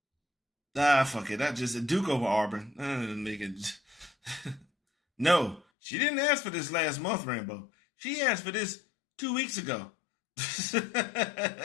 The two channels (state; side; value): drops out; right; at 5.6 s